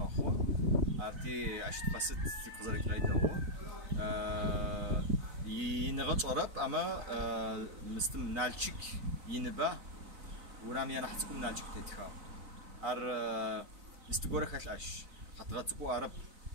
خو أرتي أشيت قست تقدر كرايد هو ينغط عرب أما مستم نالشك ينبه ورام ينحسكم نالشك تتخاو مستقورة خلاش خطرتكو عرب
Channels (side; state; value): left; late; 4.0 ms